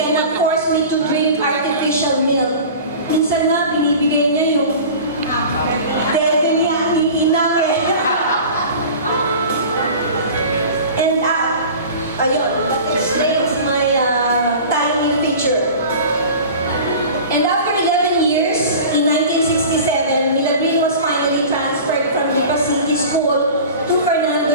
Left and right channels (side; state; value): both; inverted; correlation -0.38